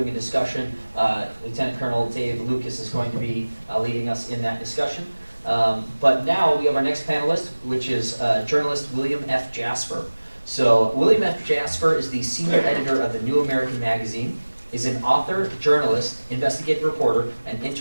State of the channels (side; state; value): both; inverted; correlation -1.00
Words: a discussion. Lieutenant Colonel Dave Lucas is going to be leading us in that discussion. But now we have our next panelist, which is journalist William F. Jasper. So William F. Jasper is the senior editor of the New American Magazine, is an author, journalist, investigative reporter, and